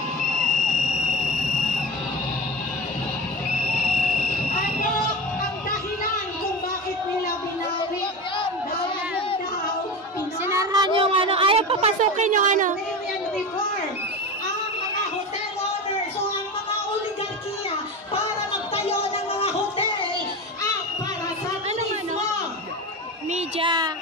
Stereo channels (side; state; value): both; normal; correlation 0.26